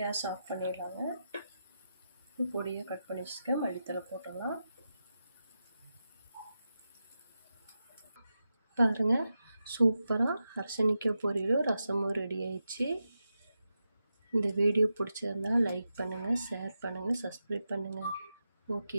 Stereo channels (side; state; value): both; inverted; correlation -0.89